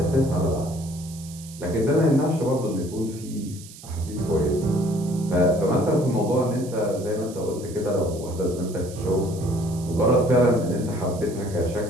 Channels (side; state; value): right; noise; hiss, 18 dB below the sound